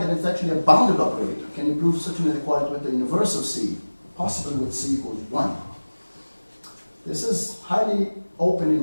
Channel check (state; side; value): inverted; both; correlation -1.00